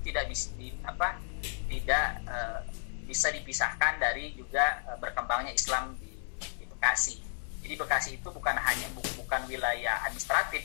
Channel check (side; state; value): right; silent; 56 dB below the other